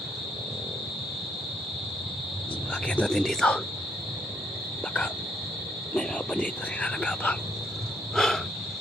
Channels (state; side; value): normal; both; correlation 0.70